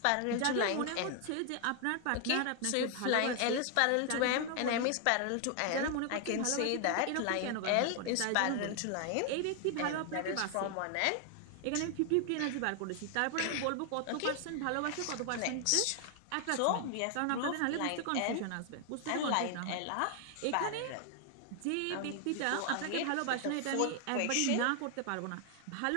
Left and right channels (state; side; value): different; both; correlation 0.00